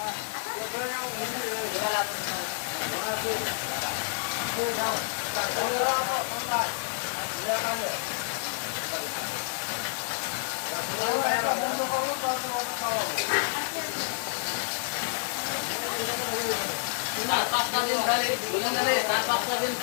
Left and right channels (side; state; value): right; silent; digital silence